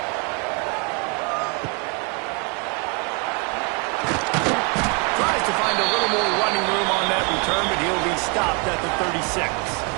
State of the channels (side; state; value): left; quieter; 33.0 dB